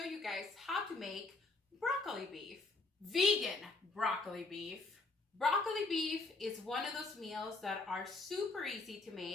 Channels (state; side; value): quieter; right; 3.5 dB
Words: you guys how to make broccoli beef. Vegan broccoli beef. Broccoli beef is one of those meals that are super easy to